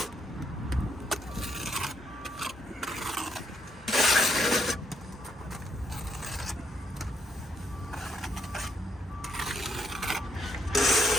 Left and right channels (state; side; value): normal; both; correlation 0.76